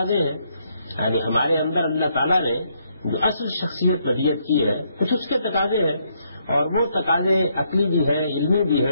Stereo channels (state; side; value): inverted; both; correlation -0.74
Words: ہیں، یعنی ہمارے اندر اللہ تعالیٰ نے جو اصل شخصیت ودیت کی ہے کچھ اس کے تقاضے ہیں، اور وہ تقاضے عقلی بھی ہیں، علمی بھی